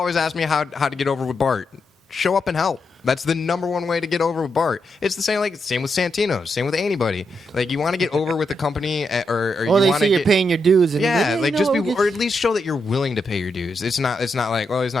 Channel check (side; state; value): both; normal; correlation 0.83